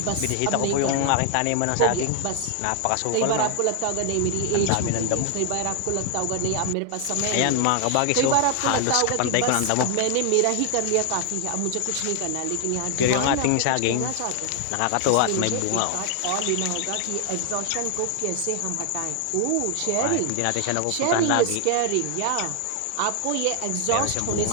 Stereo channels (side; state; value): both; different; correlation 0.00